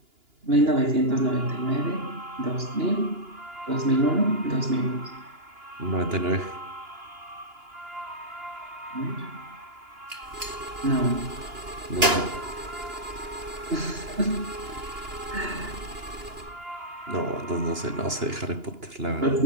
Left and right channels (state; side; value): late; left; 2.9 ms